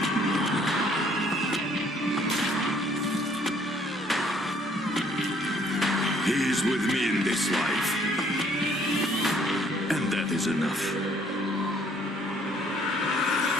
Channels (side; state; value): both; normal; correlation 0.62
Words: He is with me in this life, and that is enough.